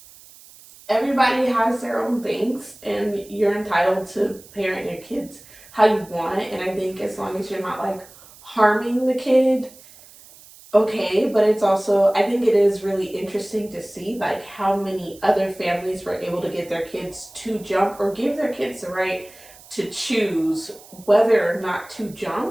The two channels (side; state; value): right; noise; hiss, 22 dB below the sound